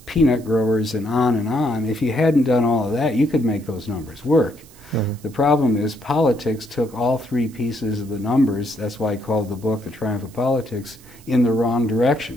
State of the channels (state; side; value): noise; right; hiss, 24 dB below the sound